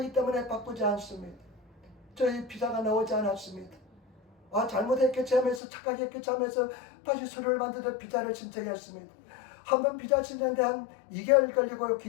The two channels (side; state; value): right; drops out; at 5.6 s